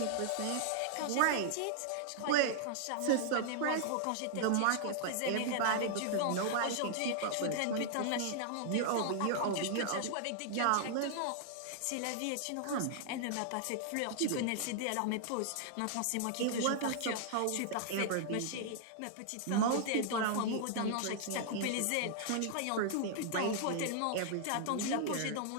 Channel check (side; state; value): both; different; correlation -0.01